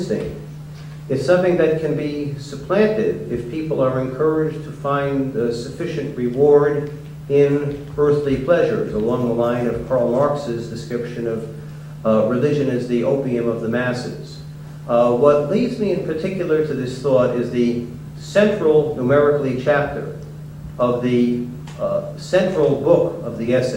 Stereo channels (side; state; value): both; identical; correlation 1.00